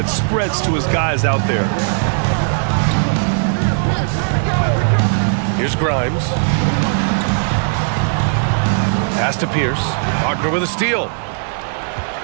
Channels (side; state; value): left; silent; digital silence